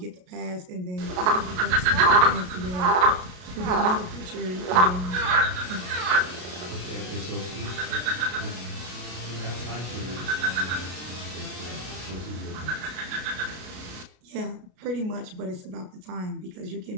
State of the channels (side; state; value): left; late; 33 ms